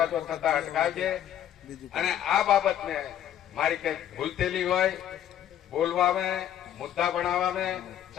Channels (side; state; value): right; quieter; 10.8 dB